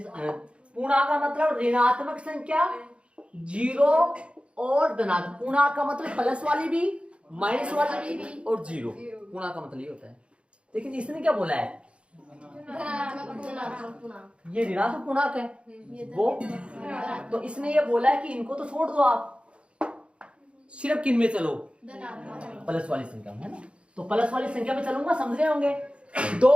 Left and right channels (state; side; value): late; left; 0.058 ms